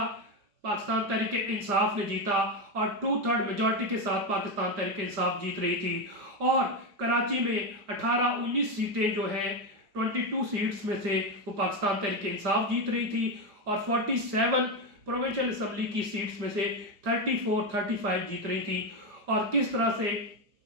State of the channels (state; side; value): late; left; 5.0 ms